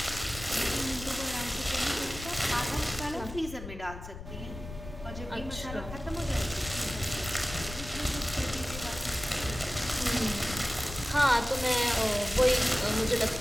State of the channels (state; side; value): noise; left; rumble, 11 dB below the sound